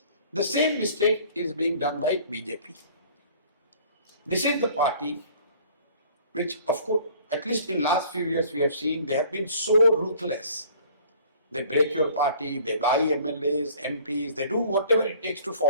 The same mistake is being done by BJP. This is the party which, of course, at least in last few years we have seen they have been so ruthless. They break your party, they buy MLAs, MPs, they do whatever it takes to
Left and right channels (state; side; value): inverted; both; correlation -0.52